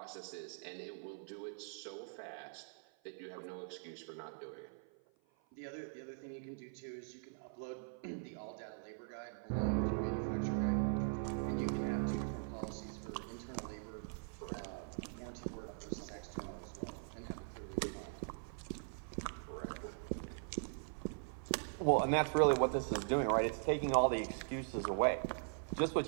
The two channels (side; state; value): left; silent; 50 dB below the other